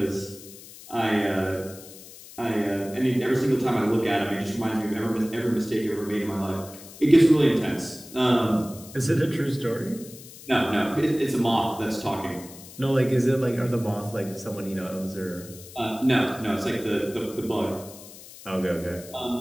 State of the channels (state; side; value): noise; left; hiss, 17 dB below the sound